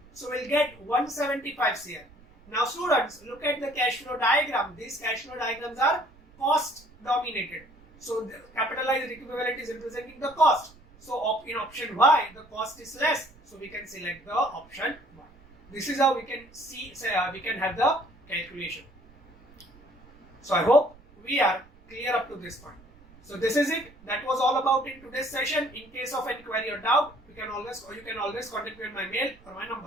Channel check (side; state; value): right; noise; rumble, 26 dB below the sound